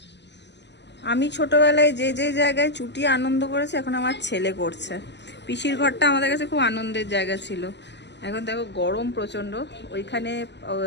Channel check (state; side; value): late; right; 0.51 ms